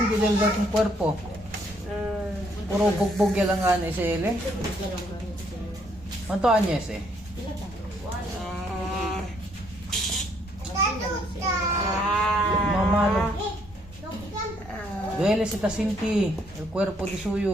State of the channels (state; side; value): normal; both; correlation 0.69